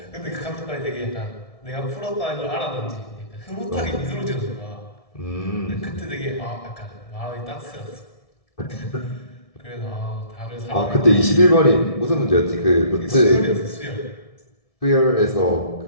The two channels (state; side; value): late; right; 1.7 ms